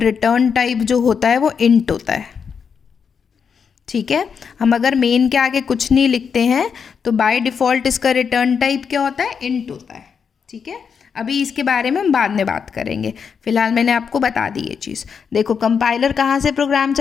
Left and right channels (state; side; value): quieter; right; 6.5 dB